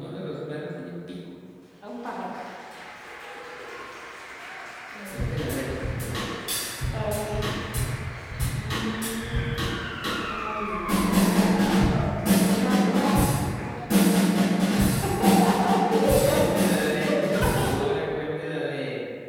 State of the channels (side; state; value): both; identical; correlation 1.00